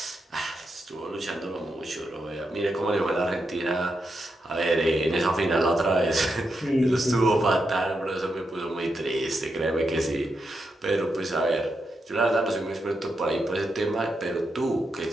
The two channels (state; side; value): normal; both; correlation 0.85